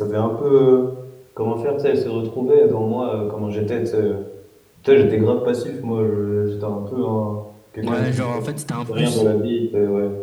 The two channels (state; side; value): identical; both; correlation 1.00